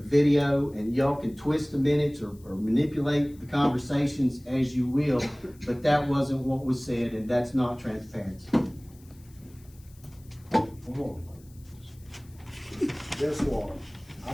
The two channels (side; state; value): left; noise; hiss, 28 dB below the sound